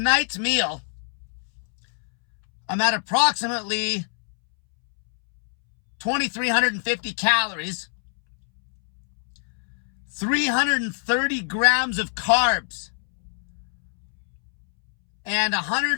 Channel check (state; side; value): silent; right; 63 dB below the other